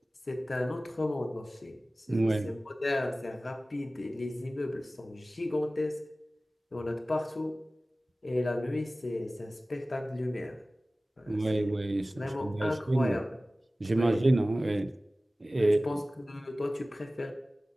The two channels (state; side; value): normal; both; correlation 0.97